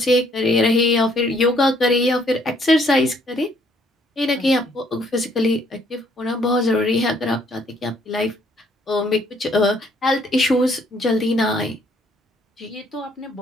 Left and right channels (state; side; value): normal; both; correlation 0.65